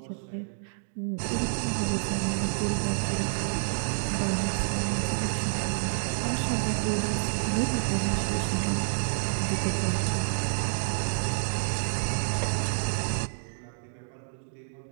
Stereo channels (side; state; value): left; silent; digital silence